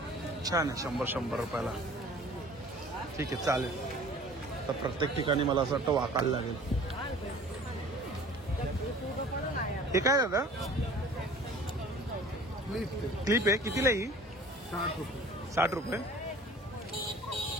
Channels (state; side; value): normal; both; correlation 0.47